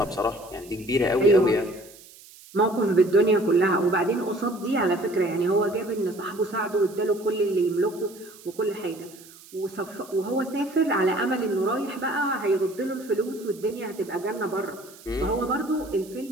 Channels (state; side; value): noise; right; hiss, 21 dB below the sound